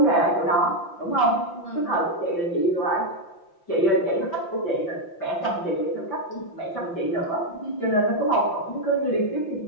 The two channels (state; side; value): late; right; 5.8 ms